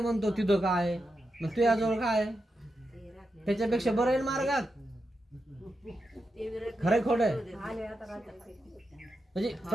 म्हणतो तिथं काय, मग तुझ्याजवळ काय, त्याच्यापेक्षा बरं आहे मार्गात. खरंय खोट आहे? म्हणजे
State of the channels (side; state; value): both; normal; correlation 0.87